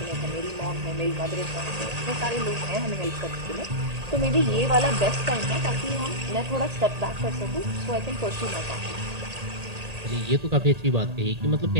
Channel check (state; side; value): late; left; 1.8 ms